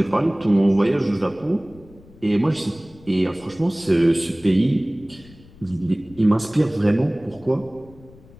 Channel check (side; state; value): left; noise; rumble, 24 dB below the sound